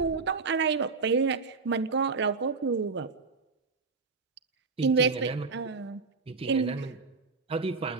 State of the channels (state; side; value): quieter; left; 4.5 dB